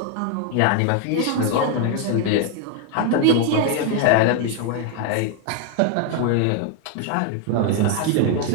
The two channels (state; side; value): different; both; correlation 0.01